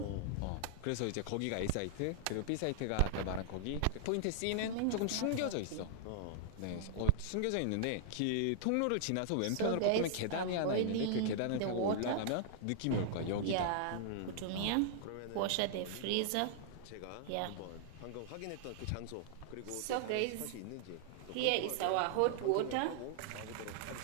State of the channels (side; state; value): both; different; correlation -0.01